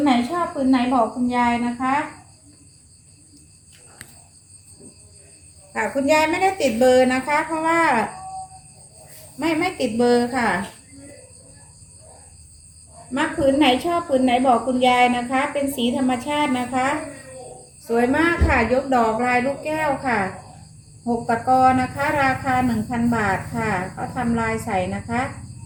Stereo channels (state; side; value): identical; both; correlation 1.00